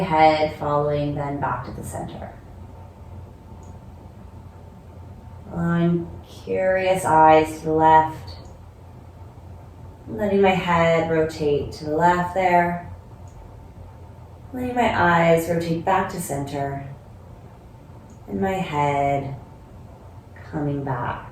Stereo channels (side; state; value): both; identical; correlation 1.00